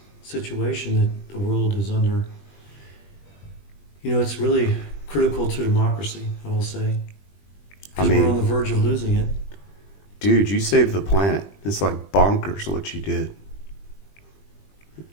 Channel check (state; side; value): late; right; 20 ms